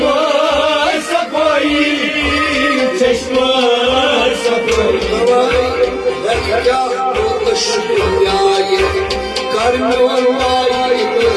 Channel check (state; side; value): identical; both; correlation 1.00